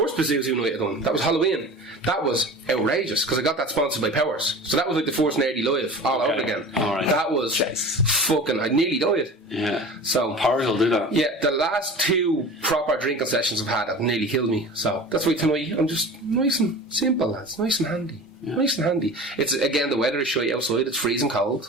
Pazuzu night I done. That was Halloween. That was outrageous, because I got that sponsored by Powers. So that was like the first Nerdy Live all over again. Right. That was fucking... I nearly died. Yeah. So... Powers will do that. Yeah, the last 2 proper drinking sessions I've had have nearly killed me. So that's why tonight I'm just nice and simple, lads. Nice and handy. Yeah. Nice and handy. It's, again, the weather is shite outside. It's freezing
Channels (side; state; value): both; normal; correlation 0.37